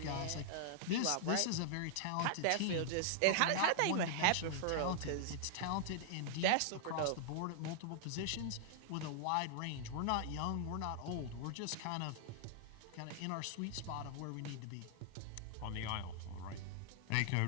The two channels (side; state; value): both; different; correlation -0.01